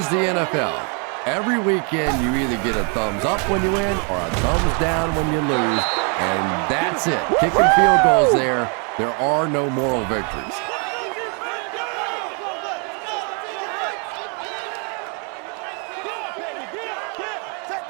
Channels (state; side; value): quieter; left; 37.3 dB